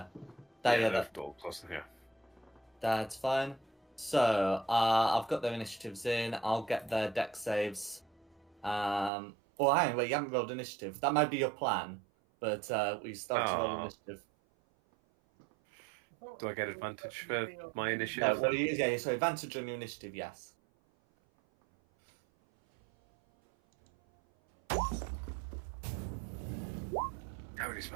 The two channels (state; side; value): drops out; left; at 9.1 s